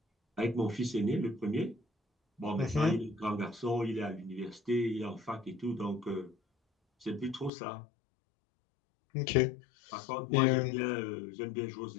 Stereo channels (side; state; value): right; drops out; at 7.5 s